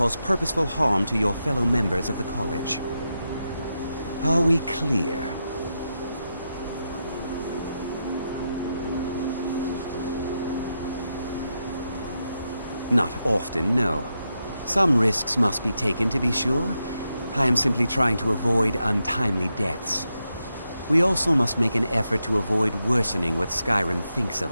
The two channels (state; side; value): inverted; both; correlation -0.86